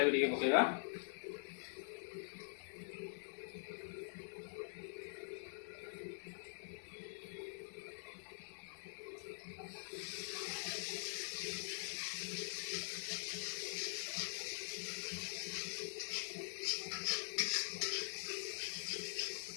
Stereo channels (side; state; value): right; silent; digital silence